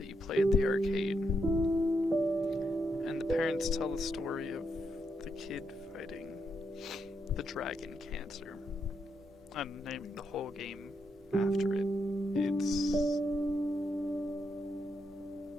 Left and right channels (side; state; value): both; normal; correlation 0.80